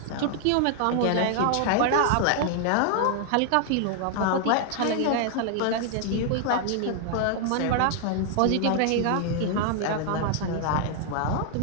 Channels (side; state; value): both; different; correlation 0.00